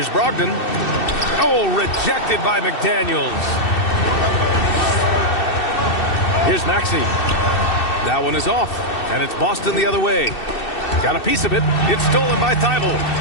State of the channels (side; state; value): right; late; 2.6 ms